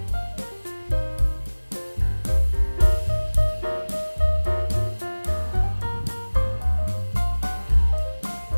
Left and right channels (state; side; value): inverted; both; correlation -1.00